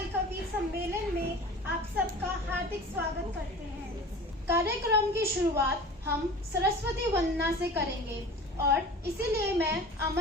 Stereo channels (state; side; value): normal; both; correlation 0.39